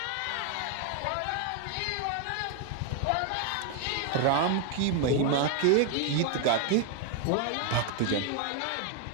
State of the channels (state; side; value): different; both; correlation 0.01